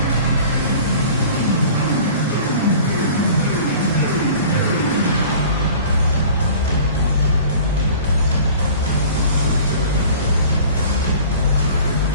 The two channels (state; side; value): inverted; both; correlation -0.44